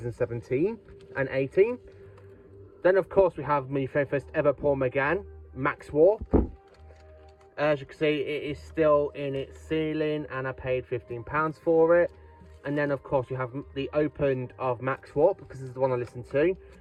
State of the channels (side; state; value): both; identical; correlation 1.00